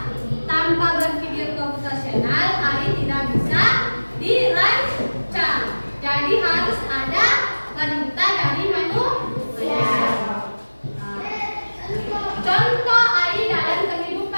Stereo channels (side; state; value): both; inverted; correlation -1.00